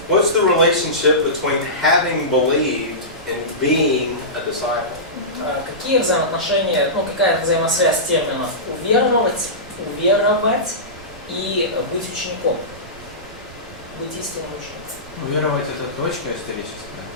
what's the relationship between having believed and being a disciple? Какие взаимоотношения, ну какая взаимосвязь терминов уверовать и быть учеником, быть истинным учеником? Уверовать — это точка историческая.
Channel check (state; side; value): noise; right; rumble, 18 dB below the sound